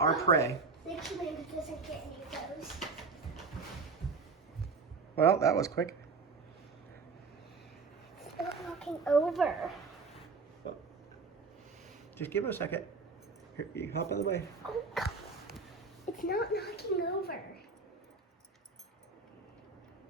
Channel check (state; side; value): quieter; left; 4.5 dB